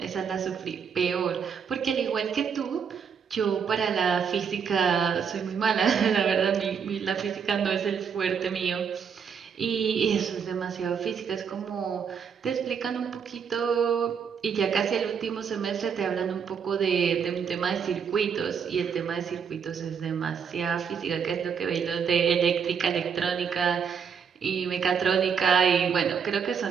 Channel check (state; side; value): quieter; left; 6.8 dB